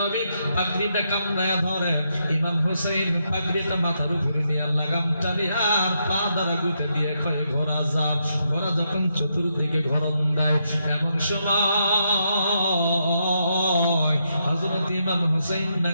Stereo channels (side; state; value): both; inverted; correlation -0.80